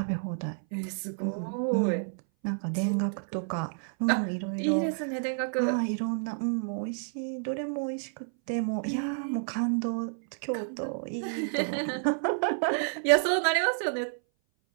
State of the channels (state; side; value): silent; left; 58 dB below the other